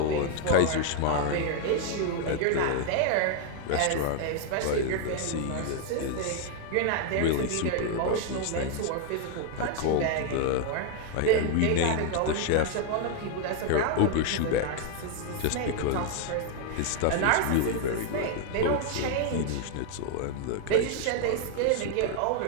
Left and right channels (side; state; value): both; different; correlation 0.00